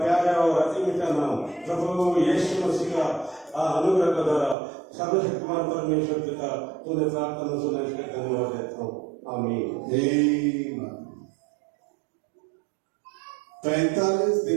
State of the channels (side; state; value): left; drops out; at 4.5 s